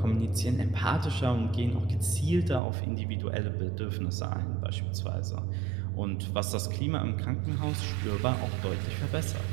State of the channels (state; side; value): drops out; left; at 2.6 s